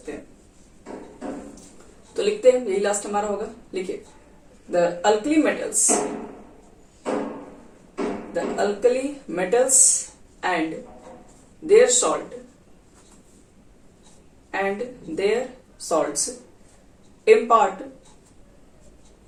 हैं, तो लिखते हैं, यही लास्ट हमारा होगा। लिखिए, the alkali metals and their salts impart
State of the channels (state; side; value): identical; both; correlation 1.00